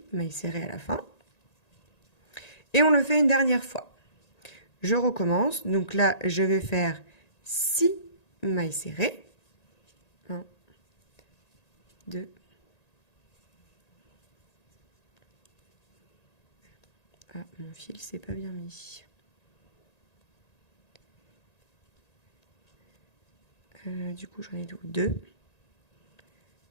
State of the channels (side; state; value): right; late; 1.9 ms